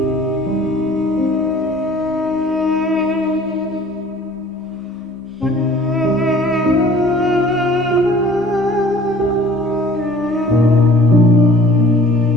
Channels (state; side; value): normal; both; correlation 0.51